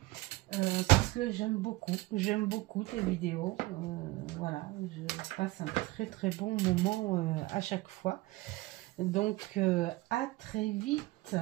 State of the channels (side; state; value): left; quieter; 20.1 dB